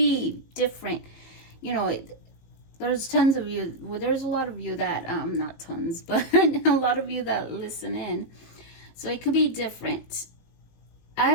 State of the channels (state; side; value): late; right; 19 ms